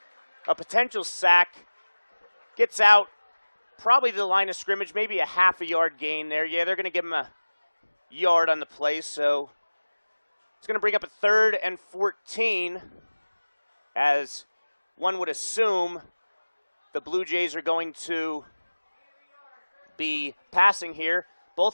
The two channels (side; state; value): both; inverted; correlation -1.00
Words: a potential sack. Gets out probably to the line of scrimmage, maybe a half a yard gain there. Yeah, they're going to give him a yard on the play, so it's going to bring up a 3rd and 14, as one would assume the Blue Jays are going to be passing here.